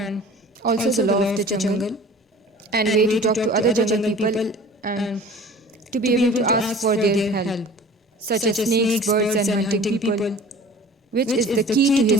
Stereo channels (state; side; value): normal; both; correlation 0.44